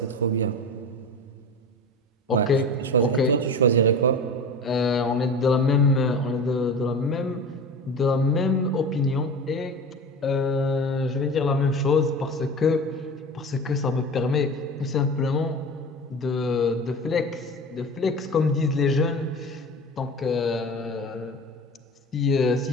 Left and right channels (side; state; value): both; normal; correlation 0.32